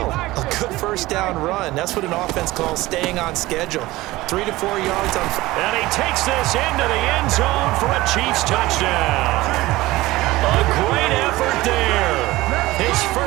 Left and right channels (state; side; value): quieter; left; 18.6 dB